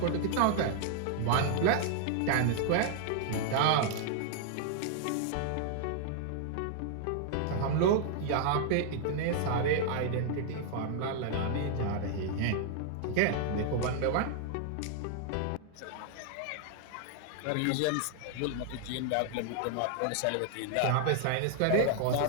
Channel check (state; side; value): different; both; correlation -0.01